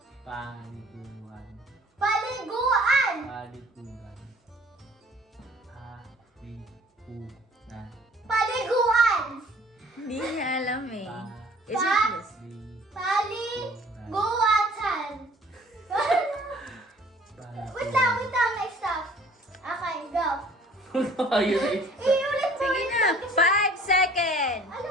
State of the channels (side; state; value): both; normal; correlation 0.53